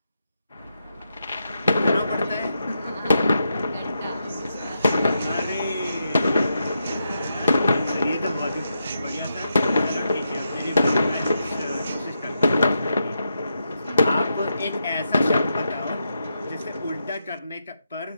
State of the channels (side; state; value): both; inverted; correlation -0.85